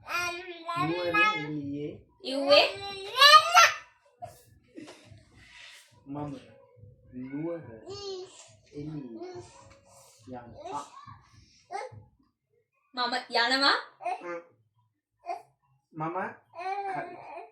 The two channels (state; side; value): identical; both; correlation 1.00